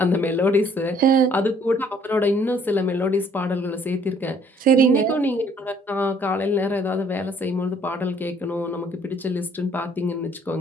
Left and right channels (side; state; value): both; normal; correlation 0.61